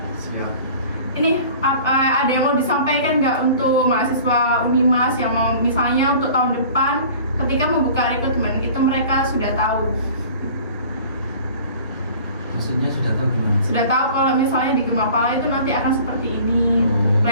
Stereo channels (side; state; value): both; inverted; correlation -0.45